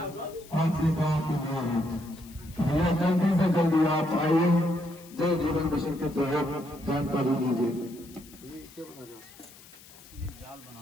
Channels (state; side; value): noise; left; hiss, 21 dB below the sound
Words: आपके गांव के लिए है। भैया जल्दी से जल्दी आप आइए, जल जीवन मिशन के तहत जानकारी दीजिए।